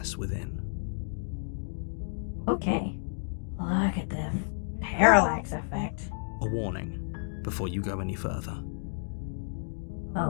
within. Okay. Look at the parallax effect. A warning before you go any further.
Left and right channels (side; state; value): right; silent; digital silence